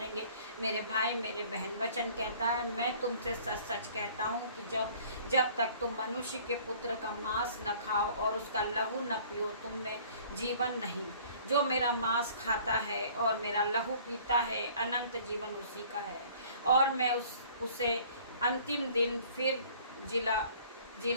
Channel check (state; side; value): inverted; both; correlation -0.53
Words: मेरे भाई, मेरे बहन, वचन कहता है, मैं तुमसे सच सच कहता हूँ कि जब तक तुम मनुष्य के पुत्र का मांस न खाओ और उसका लहू न पियो, तुम में जीवन नहीं। जो मेरा मांस खाता है और मेरा लहू पीता है, अनंत जीवन उसी का है, और मैं उसे अंतिम दिन फिर